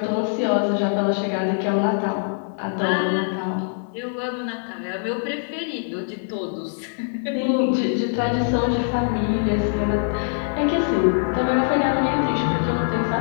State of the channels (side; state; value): right; silent; digital silence